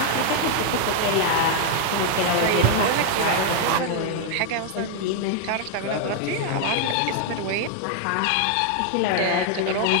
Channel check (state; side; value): different; both; correlation 0.00